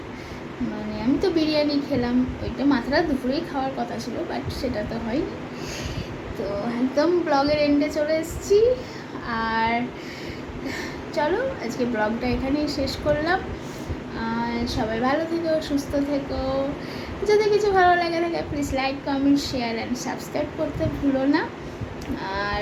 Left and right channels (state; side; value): identical; both; correlation 1.00